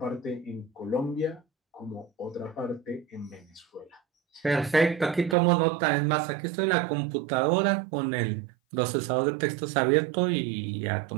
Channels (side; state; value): left; drops out; at 5.4 s